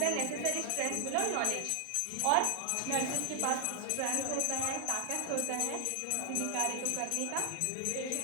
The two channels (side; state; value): both; different; correlation 0.00